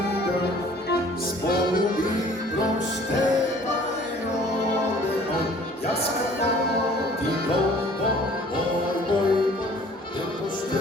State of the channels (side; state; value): both; normal; correlation 0.52